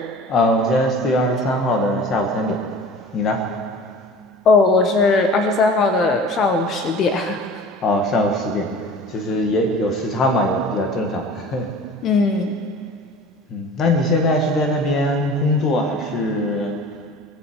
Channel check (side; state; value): both; normal; correlation 0.42